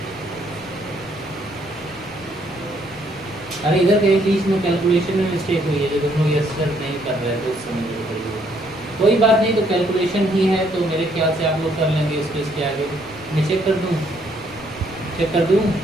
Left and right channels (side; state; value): left; noise; rumble, 21 dB below the sound